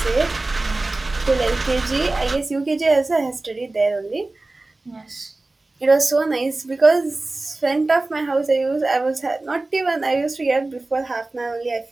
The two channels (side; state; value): left; quieter; 3.1 dB